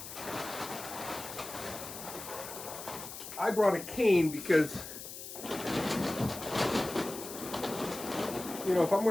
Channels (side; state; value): left; noise; hiss, 10 dB below the sound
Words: I brought a cane because, you know, if I'm